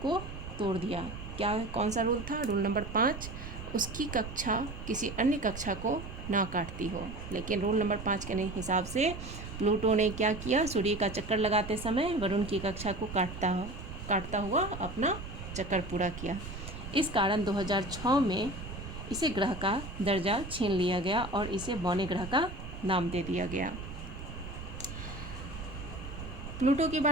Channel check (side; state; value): right; noise; rumble, 10 dB below the sound